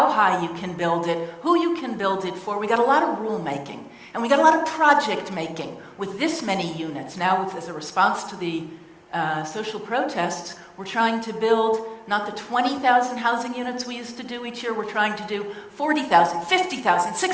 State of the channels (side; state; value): both; identical; correlation 1.00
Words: high you can build it, who you can build it for. We got a lot of rule-making. And we got a lot of project-making with this many units. Now, as a response to the social protests, we're trying to build not the 20,000 housing units we used to do each year. We're trying to do 40,000, 50,000,